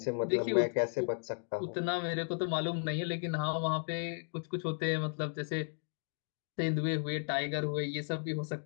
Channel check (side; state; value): right; silent; 55 dB below the other